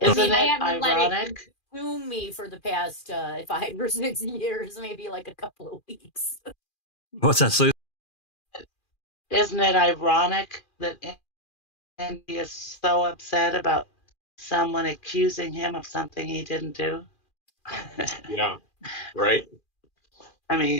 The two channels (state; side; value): late; right; 2.4 ms